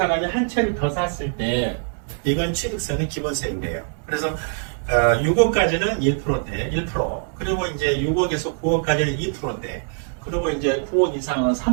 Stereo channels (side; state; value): left; silent; digital silence